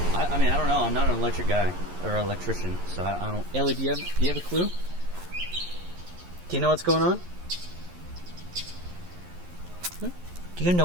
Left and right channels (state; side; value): late; left; 11 ms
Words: I mean, I don't know. I'm not an electric guy or electrician, so I don't. Ellie, do you have a clue? Do you know what's going on? Do you know